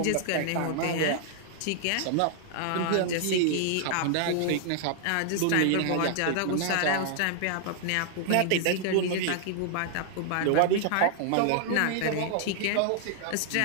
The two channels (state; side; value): different; both; correlation -0.01